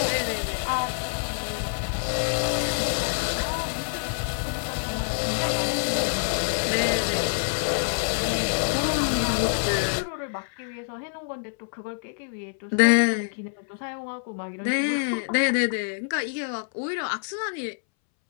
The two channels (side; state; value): right; silent; 61 dB below the other